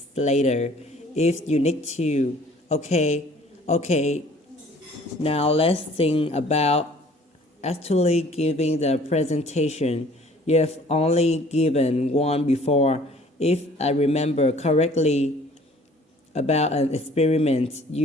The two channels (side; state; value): both; normal; correlation 0.54